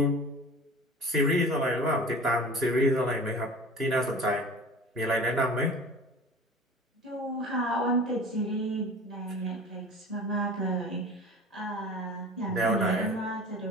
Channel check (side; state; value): both; normal; correlation 0.40